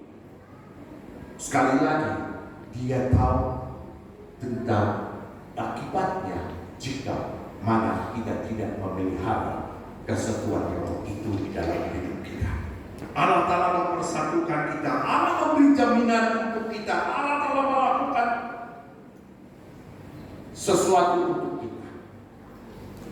sekali lagi dia tahu tentang akibatnya jika mana kita tidak memelihara kesatuan roh itu di dalam hidup kita. Allah Ta'ala mempersatukan kita, Allah memberi jaminan untuk kita, Allah Ta'ala melakukan sesuatu untuk kita.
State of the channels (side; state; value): both; identical; correlation 1.00